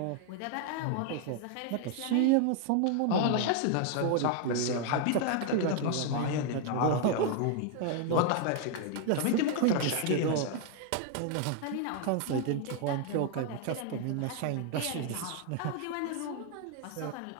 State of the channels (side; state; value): both; different; correlation 0.00